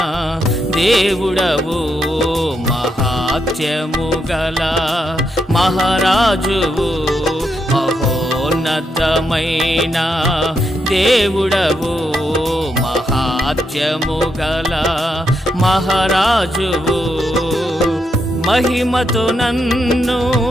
దేవుడవు, మహాత్యము గల మహారాజువు. మహోన్నతమైన దేవుడవు, మహాత్యము గల మహారాజువు. మహిమతో నన్ను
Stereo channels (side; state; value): both; normal; correlation 0.80